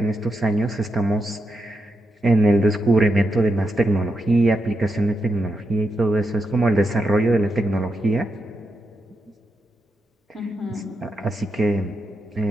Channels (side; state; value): both; normal; correlation 0.85